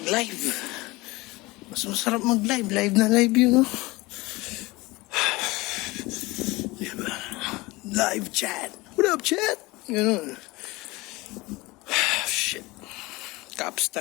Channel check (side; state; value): right; quieter; 22.0 dB